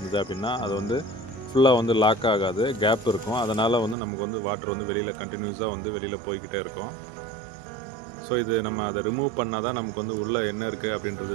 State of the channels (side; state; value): left; drops out; at 4.0 s